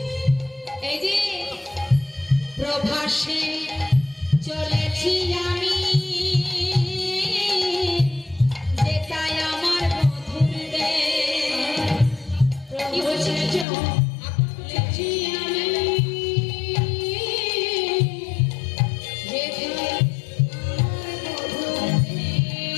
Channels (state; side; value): drops out; right; at 13.7 s